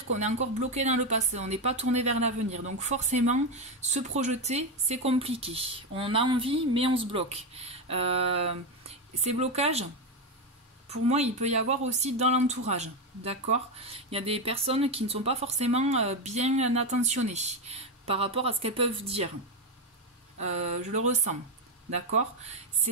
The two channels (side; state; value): both; normal; correlation 0.10